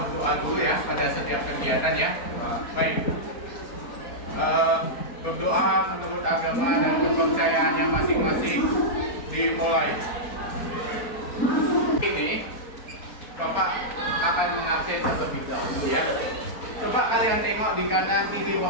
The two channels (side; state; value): right; late; 4.3 ms